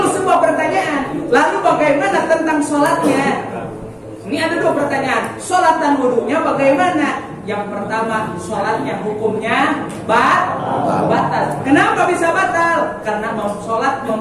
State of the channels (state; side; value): identical; both; correlation 1.00